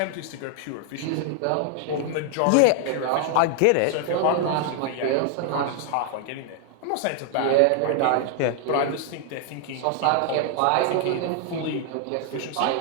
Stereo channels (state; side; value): different; both; correlation 0.00